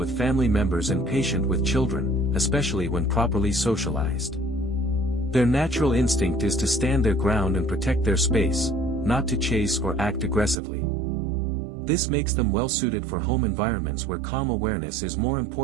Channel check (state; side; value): drops out; left; at 10.6 s